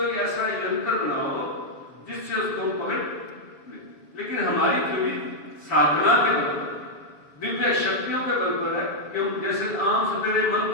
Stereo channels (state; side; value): late; right; 7.1 ms